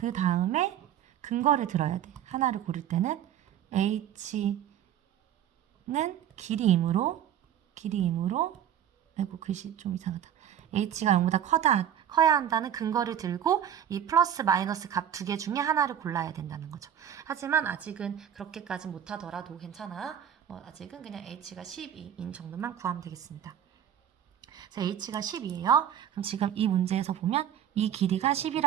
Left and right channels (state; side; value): quieter; left; 10.0 dB